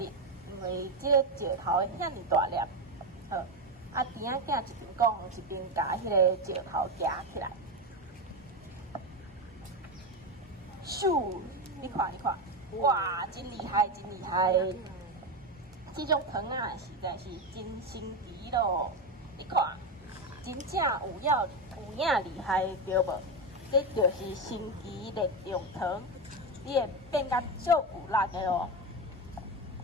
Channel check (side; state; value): both; normal; correlation 0.14